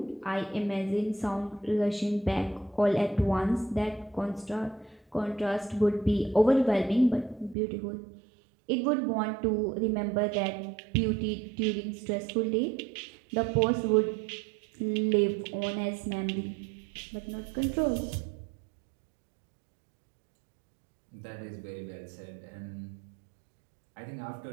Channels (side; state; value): left; drops out; at 7.6 s